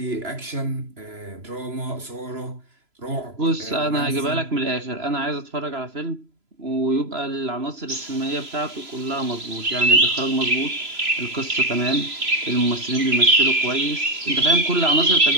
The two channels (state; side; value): late; left; 3.0 ms